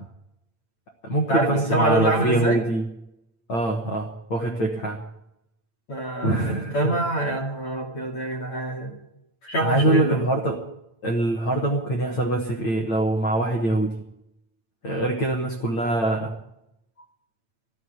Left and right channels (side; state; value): right; late; 8.8 ms